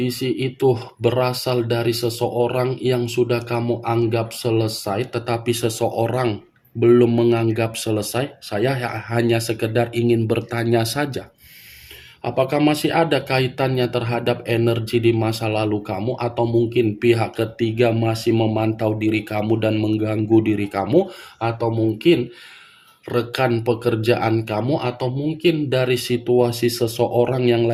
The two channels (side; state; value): both; identical; correlation 1.00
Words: itu berasal dari seseorang yang sudah kamu anggap selesai, tetapi seseorang belum menganggap selesai? Saya hanya sekedar ingin bertanya saja. Apakah masih ada kaitannya terhadap energi di masa lalu kamu, atau mungkin pihak ketiga masih memantau diri kamu dan mengganggu diri kamu, atau mungkin rekan pekerjaan kamu, atau mungkin dari situasi seseorang yang